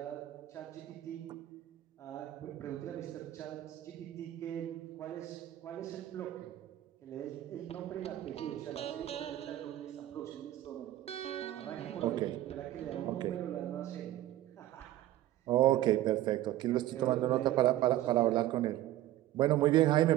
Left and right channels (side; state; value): left; quieter; 14.1 dB